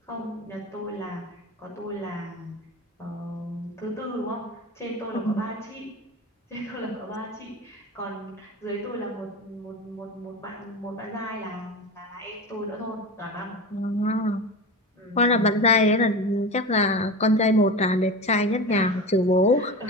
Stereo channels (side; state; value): both; normal; correlation 0.28